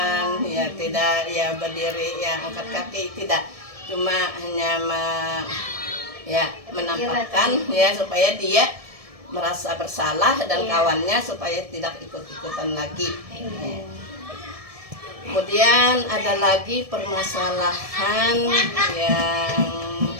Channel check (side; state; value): left; late; 1.7 ms